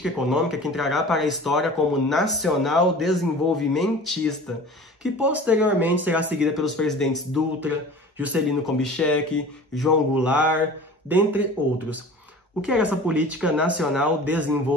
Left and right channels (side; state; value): both; normal; correlation 0.40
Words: econômica que entrará para a história como nacional desenvolvimentista, que posteriormente será seguida pelos presidentes Dutra, Juscelino Kubitschek, João Goulart, dentre outros. O que era essa política nacional